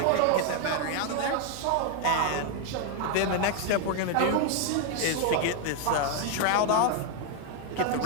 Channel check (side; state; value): both; different; correlation 0.01